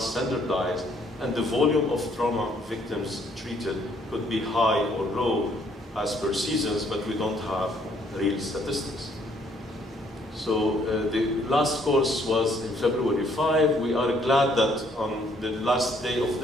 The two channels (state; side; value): normal; both; correlation 0.66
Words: standardized, and the volume of trauma victims treated could be high or low as per seasons, but we don't have real statistics. So the last course was in February 5. We are glad that on the last day of